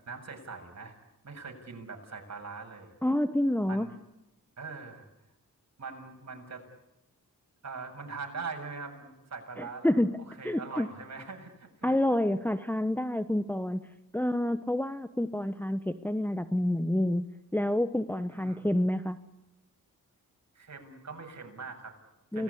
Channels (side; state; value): both; normal; correlation 0.90